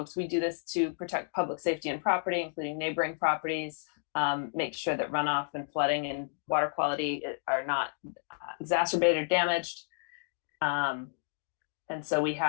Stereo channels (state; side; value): silent; right; digital silence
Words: we do this to protect public safety and property, including neighboring properties, make sure that runoff and flooding and water quality are not exacerbated or damaged. And so we